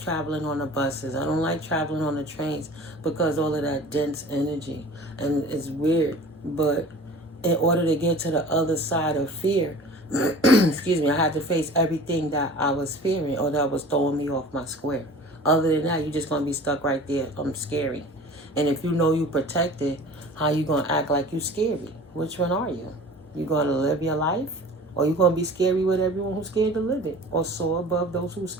traveling on the buses. I don't like traveling on the trains because all of that dense energy. And it's weird. But in order to get to the other side of fear, excuse me, I had to face everything that I was fearing or that was throwing me off my square. Other than that, you're just going to be stuck right there. I'm scary. And if you know you protected, how you going to act like you scary? Which one are you? You going to live your life? Or you going to be scary with everyone who's scared to live it? Or soar above those who's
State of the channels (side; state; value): both; normal; correlation 0.42